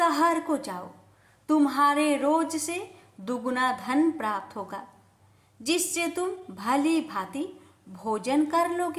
को जाओ। तुम्हारे रोज से दुगुना धन प्राप्त होगा, जिससे तुम भली भांति भोजन कर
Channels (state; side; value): identical; both; correlation 1.00